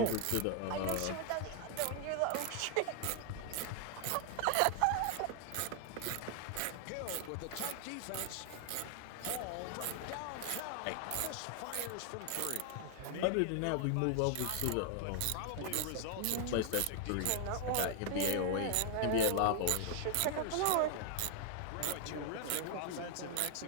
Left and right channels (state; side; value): different; both; correlation 0.00